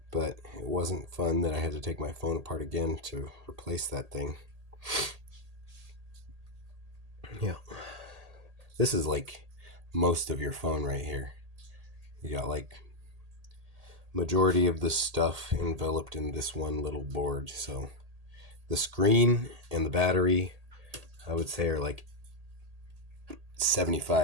but it wasn't fun that I had to take my phone apart again to replace that thing. Yeah. This is like most of your phone right here. You got like majority of the stuff enveloped in this one little board. So the screen and the battery, I would say, are like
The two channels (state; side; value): late; left; 1.8 ms